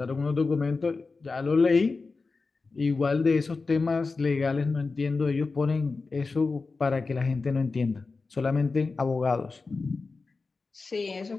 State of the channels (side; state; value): right; quieter; 4.1 dB